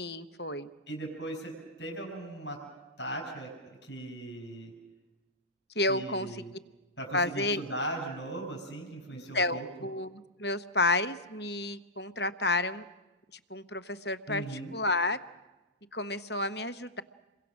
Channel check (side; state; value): both; normal; correlation -0.10